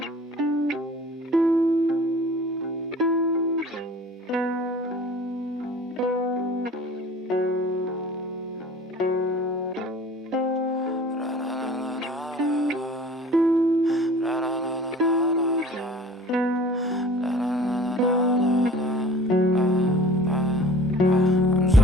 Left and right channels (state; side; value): normal; both; correlation 0.46